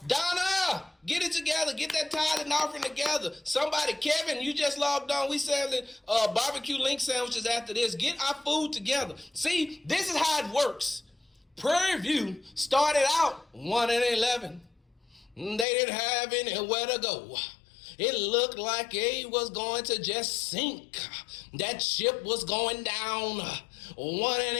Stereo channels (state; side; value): drops out; right; at 15.7 s